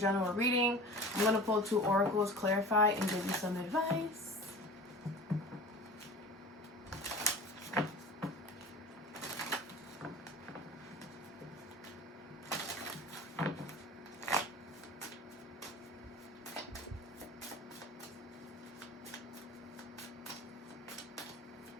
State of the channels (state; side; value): normal; both; correlation 0.38